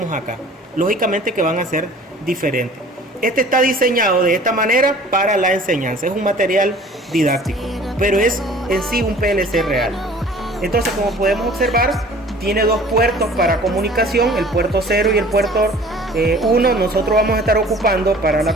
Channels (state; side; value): normal; both; correlation 0.48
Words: acá. Lógicamente que van a ser diferentes. Este está diseñado de esta manera para la enseñanza, es un material didáctico, pero es en sí un PLC real. Entonces, como podemos observar, tiene dos puertos para comunicación, el puerto 0 y el puerto 1. Nosotros vamos a estar ocupando para